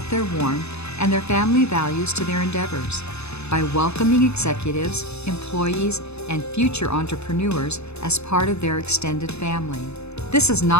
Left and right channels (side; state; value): right; late; 0.80 ms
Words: their warmth and their family values to their endeavors by welcoming executives, employees, and future entrepreneurs as part of their extended family. This is